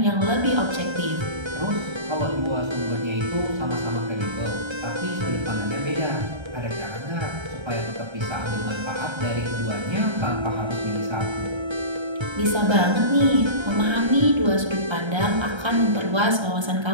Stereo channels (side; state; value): left; late; 1.3 ms